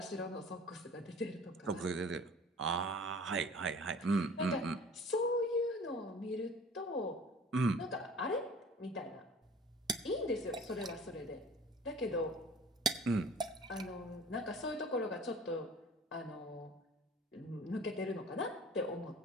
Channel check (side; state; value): both; normal; correlation 0.46